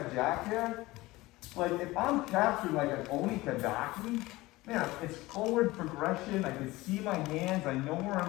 Jack here, like if I'm capturing like an Oni Kadaki, man, it's forward progression, I can see my hands, I know where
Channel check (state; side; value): quieter; right; 19.7 dB